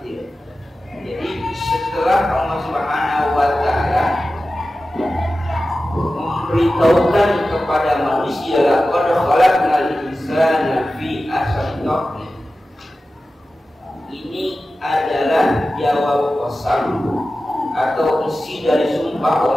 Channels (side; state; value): both; normal; correlation 0.94